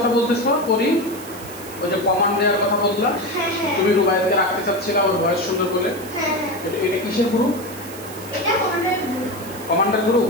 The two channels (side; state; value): right; noise; hiss, 16 dB below the sound